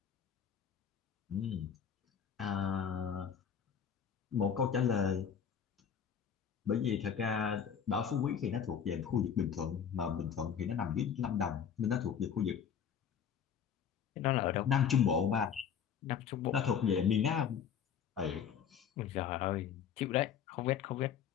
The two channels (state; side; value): quieter; right; 7.8 dB